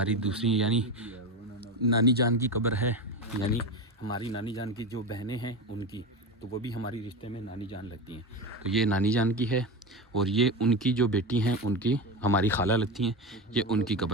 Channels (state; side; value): normal; both; correlation 0.21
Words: दूसरी यानी नानी जान की कब्र है, यानी हमारी नानी जान की जो बहनें हैं उनकी, तो वो भी हमारी रिश्ते में नानी जान लगती हैं। तो ये नानी जान की है, और ये उनकी जो बेटी हैं उनकी हमारी खाला लगती हैं, ये उनकी